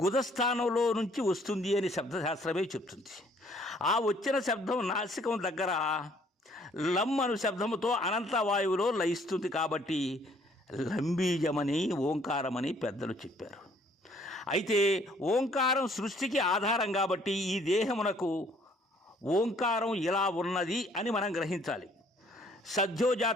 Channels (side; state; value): both; normal; correlation 0.61